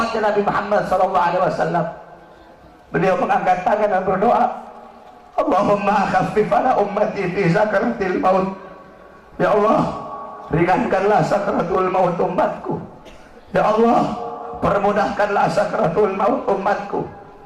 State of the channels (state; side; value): identical; both; correlation 1.00